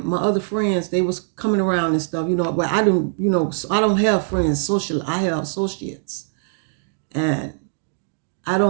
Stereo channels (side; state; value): left; silent; digital silence